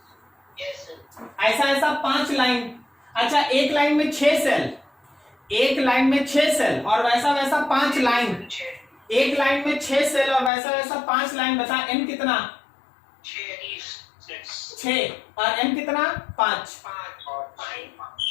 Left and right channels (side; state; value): right; drops out; at 10.5 s